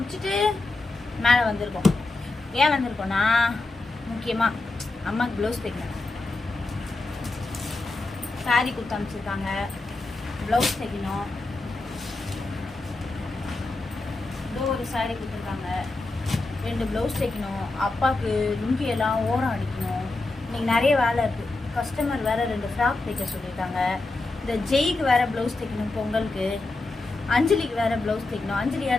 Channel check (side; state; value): right; quieter; 3.2 dB